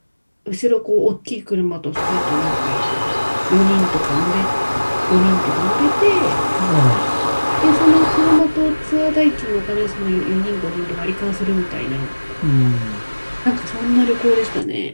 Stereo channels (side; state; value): both; inverted; correlation -1.00